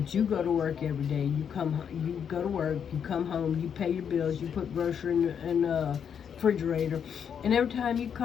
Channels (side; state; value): right; quieter; 7.7 dB